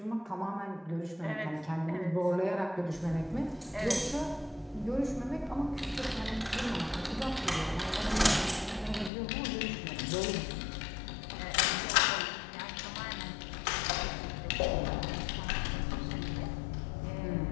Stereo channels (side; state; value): right; drops out; at 9.1 s